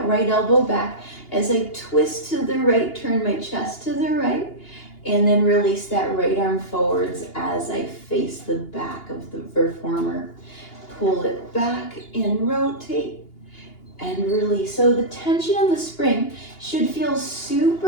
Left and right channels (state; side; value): late; right; 2.8 ms